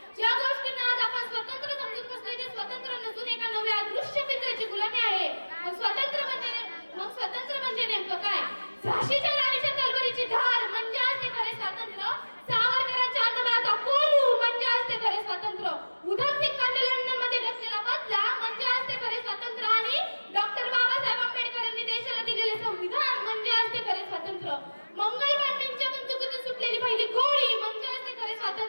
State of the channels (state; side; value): inverted; both; correlation -1.00